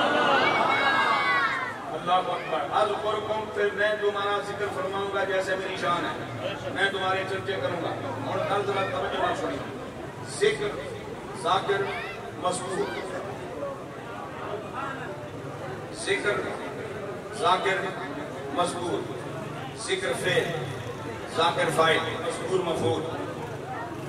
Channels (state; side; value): identical; both; correlation 1.00